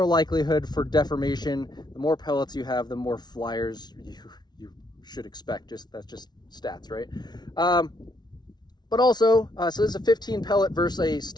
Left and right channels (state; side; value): late; right; 0.20 ms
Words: for deformation. The more pellets you have, the more flyers you should expect. That's just stats, right? But also, so this is a 15 pellet versus a